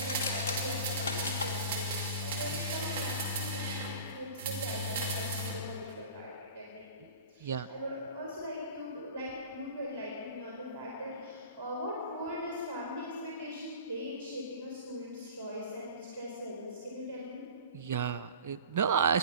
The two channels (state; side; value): inverted; both; correlation -0.39